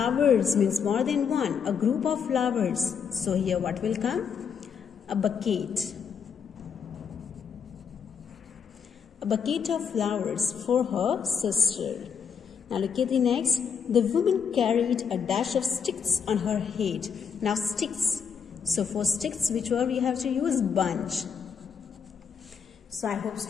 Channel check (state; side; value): quieter; right; 6.8 dB